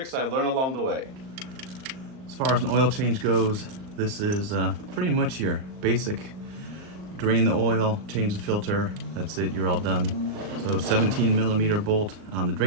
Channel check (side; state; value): left; late; 38 ms